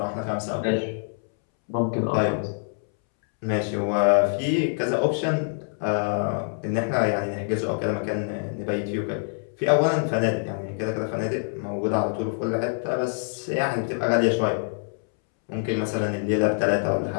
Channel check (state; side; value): silent; right; 62 dB below the other